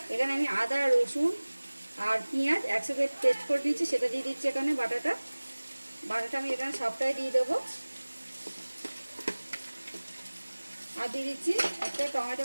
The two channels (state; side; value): inverted; both; correlation -1.00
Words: এখানে আমি আদা রসুন আর পেঁয়াজ একসাথে পেস্ট করে দিচ্ছি, সেটা দিয়ে দিচ্ছি এখানে। বাটাটা আমি এখানে সবটাই দিয়ে দেবো। আর দিয়ে দিচ্ছি একটা টমেটো